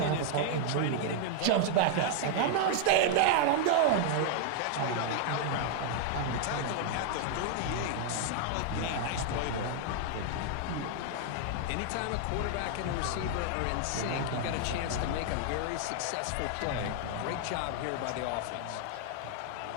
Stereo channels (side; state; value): both; different; correlation 0.00